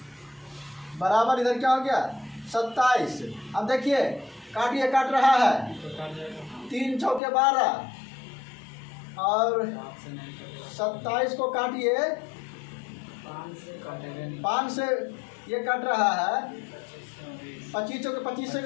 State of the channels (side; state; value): right; drops out; at 7.2 s